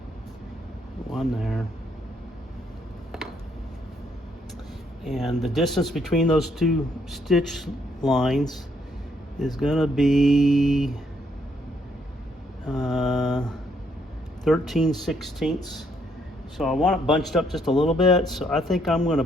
one there. And the distance between those 2 stitch lines is going to be 13/16. So I want it bunched up just a little bit. So I think I'm going to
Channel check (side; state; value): both; normal; correlation 0.71